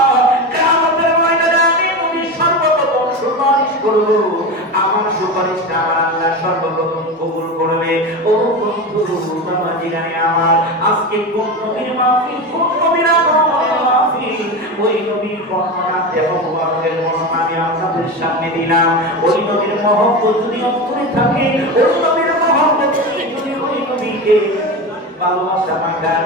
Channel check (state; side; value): normal; both; correlation 0.23